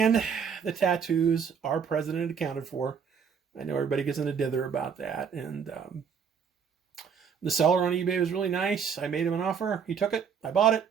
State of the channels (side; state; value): left; quieter; 6.8 dB